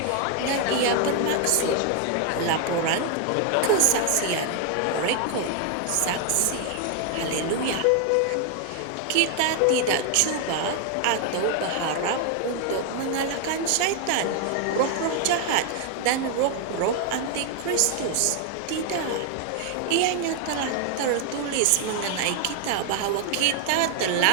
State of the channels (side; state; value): both; different; correlation 0.00